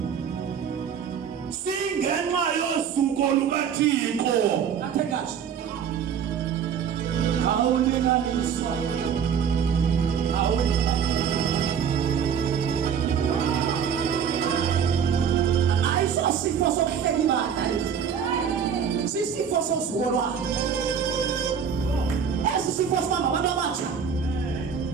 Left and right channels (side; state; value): left; quieter; 7.5 dB